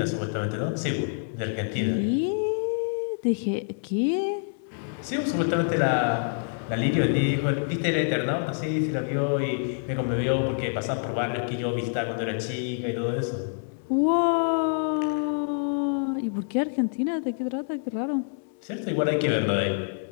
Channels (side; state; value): right; silent; digital silence